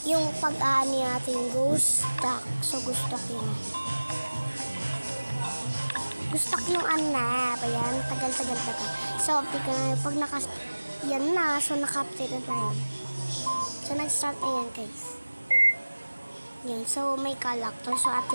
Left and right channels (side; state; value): both; inverted; correlation -1.00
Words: Yung pag-aani natin ghost stack. So, ghost stack yun. Ghost stack yung anap. Ayan, tagal-tagal. So, tika na pag yan na. So, naka-update na tayo. So, nag-start na yan guys. Yan. So, may character. So,